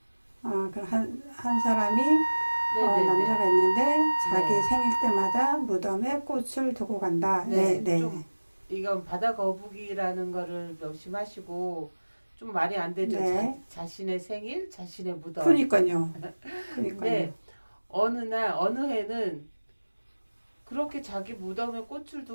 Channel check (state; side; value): inverted; both; correlation -1.00